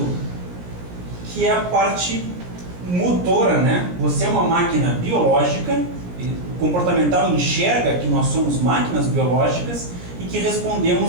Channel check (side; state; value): left; late; 17 ms